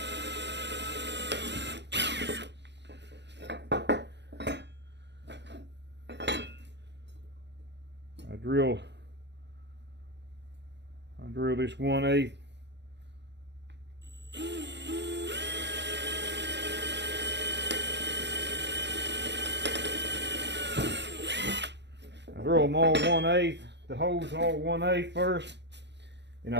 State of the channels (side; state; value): left; late; 0.51 ms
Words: I drill this 1/8. Drill them all 1/8, the holes all 1/8 first. Then